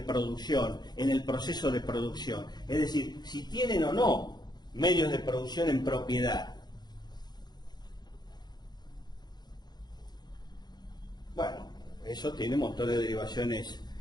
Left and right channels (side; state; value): right; late; 0.20 ms